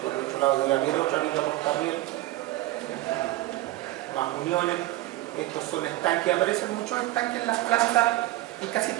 por el otro lado debe haber otra viga portarriel, más uniones. Estos son estanques, aparecen muchos estanques en las plantas, en casi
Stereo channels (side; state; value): left; quieter; 16.8 dB